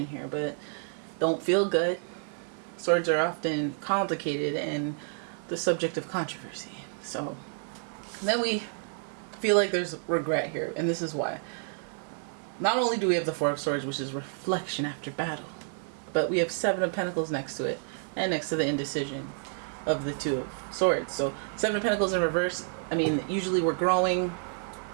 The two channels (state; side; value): silent; left; 58 dB below the other